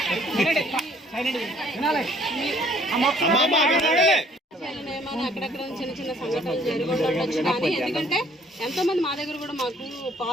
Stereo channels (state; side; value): normal; both; correlation 0.60